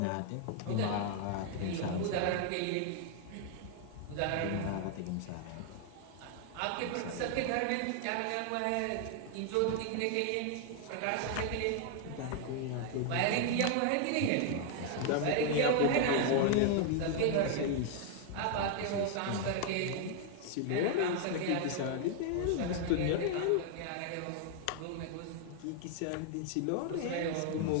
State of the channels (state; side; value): different; both; correlation 0.00